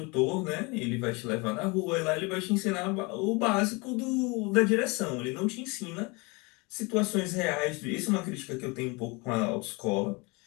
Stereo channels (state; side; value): quieter; right; 27.7 dB